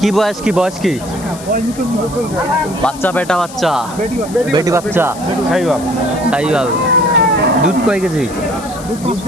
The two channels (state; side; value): noise; left; hiss, 16 dB below the sound